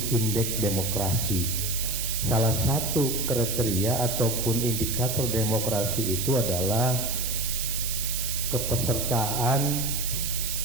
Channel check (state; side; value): noise; right; hiss, 2 dB below the sound